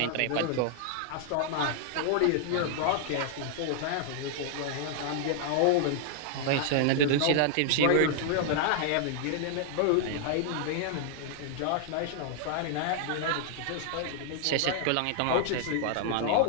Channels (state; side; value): different; both; correlation -0.01